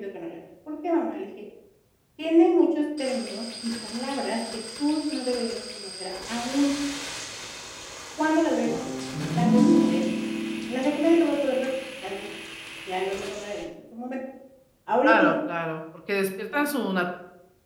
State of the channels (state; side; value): identical; both; correlation 1.00